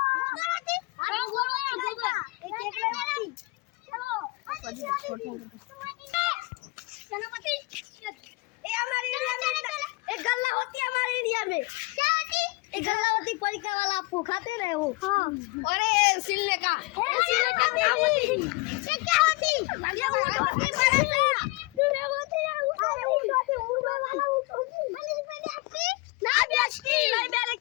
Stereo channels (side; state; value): right; quieter; 24.5 dB